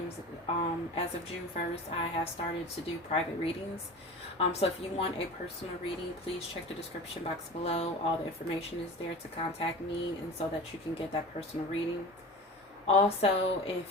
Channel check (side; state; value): both; normal; correlation 0.35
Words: as of June 1st, I have started to do private readings. So if you want a personal reading, please check the description box below. All the information is there to contact me and so that you can get that personal reading. Also, if